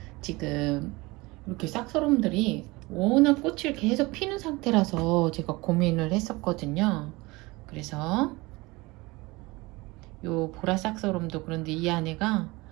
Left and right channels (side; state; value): left; quieter; 22.9 dB